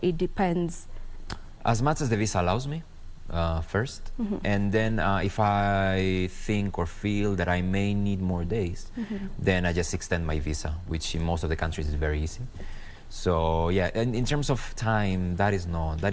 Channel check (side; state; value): both; identical; correlation 1.00